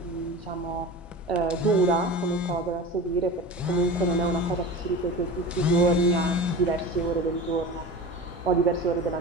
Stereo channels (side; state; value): both; normal; correlation 0.31